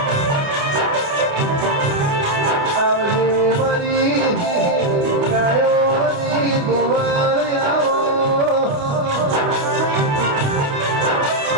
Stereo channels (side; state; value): left; late; 28 ms